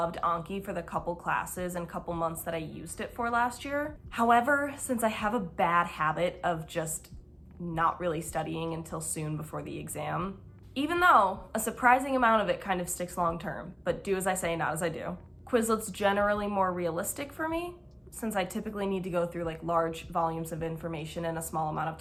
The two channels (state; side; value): identical; both; correlation 1.00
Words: Anki for the couple classes and couple months that I used it for last year. However, since I have a bad habit of just not really studying until soon before the exam, even though a surprising amount of it kind of sticks long term, but do as I say, not as I do. Quizlet's generally more realistic for me since I typically need to go through like large volumes of information in a small amount of